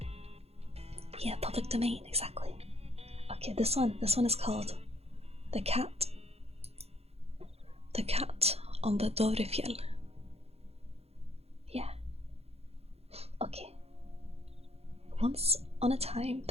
Yeah, public domain, exactly. Okay, this one is called The Cat. The Cat on the Dovrefjell. Yeah. Okay. Once on a time,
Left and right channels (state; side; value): late; left; 0.30 ms